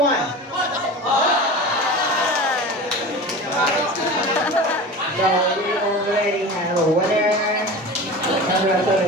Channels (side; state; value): both; normal; correlation 0.33